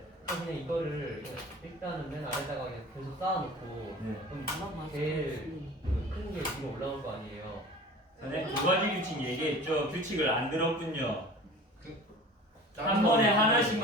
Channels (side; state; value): both; normal; correlation 0.40